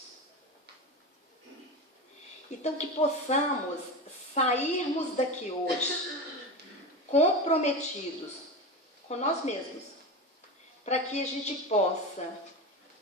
Então, que possamos sairmos daqui hoje comprometidos com nós mesmos, para que a gente possa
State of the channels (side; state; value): both; normal; correlation 0.23